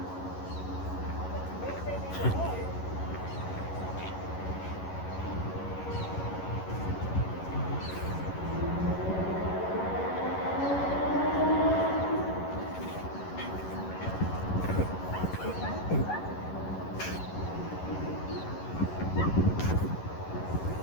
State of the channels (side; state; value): right; late; 11 ms